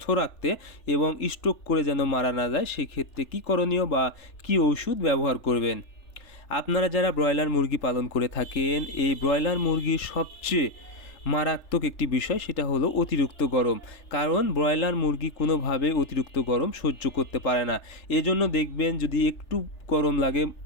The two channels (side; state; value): right; late; 3.4 ms